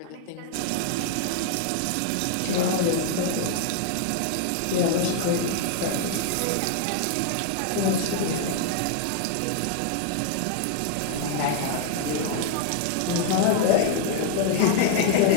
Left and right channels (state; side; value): different; both; correlation 0.00